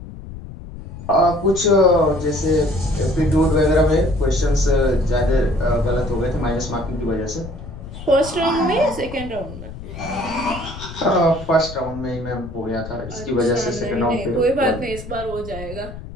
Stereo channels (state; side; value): noise; left; rumble, 12 dB below the sound